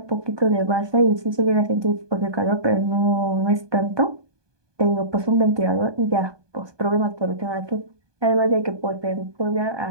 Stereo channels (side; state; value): left; late; 1.2 ms